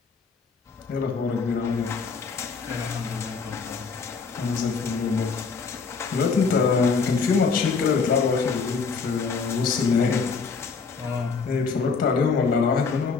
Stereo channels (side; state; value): right; quieter; 5.0 dB